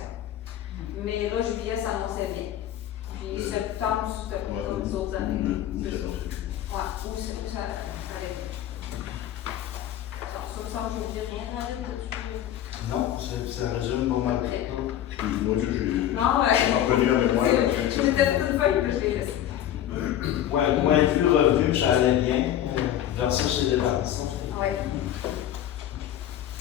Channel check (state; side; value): quieter; right; 11.5 dB